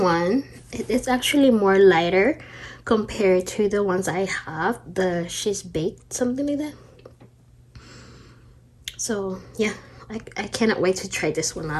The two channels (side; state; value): both; identical; correlation 1.00